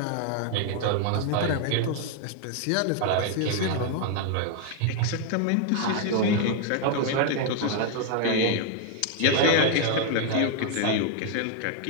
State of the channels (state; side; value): different; both; correlation 0.00